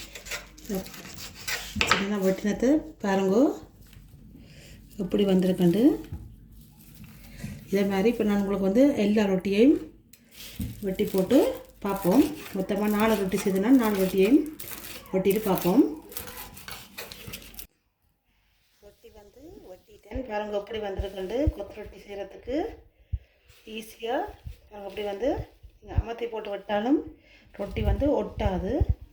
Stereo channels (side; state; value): both; identical; correlation 1.00